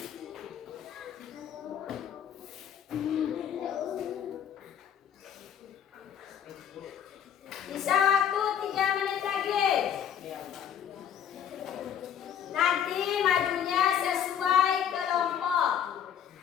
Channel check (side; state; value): right; quieter; 9.1 dB